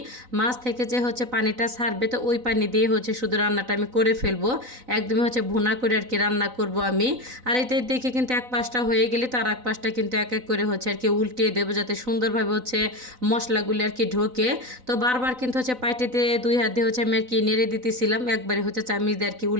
মাছ থেকে যে পানিটা ছাড়বে তো ওই পানি দিয়ে শুধু রান্নাটা আমি করে ফেলবো, একদমই ভুনা করে আর কি রান্না করব আমি। আর এতে দেখে কিন্তু এক পাশটা হয়ে গেলে তার এক পাশটা কিন্তু এক এক করে আর কি উল্টিয়ে দেবো যাতে সুন্দরভাবে মশলাগুলি আর কি ঢোকে। তো বারবার কিন্তু পাইটেতে দুই হাত দিয়ে আমি আর কি নেড়ে দিতেছিলাম, একবারে চামিচ দিয়ে আর কি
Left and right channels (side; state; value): left; late; 4.0 ms